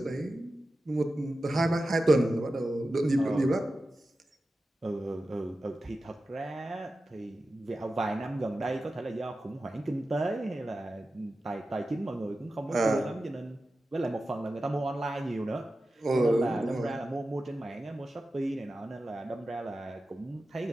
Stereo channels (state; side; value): normal; both; correlation 0.93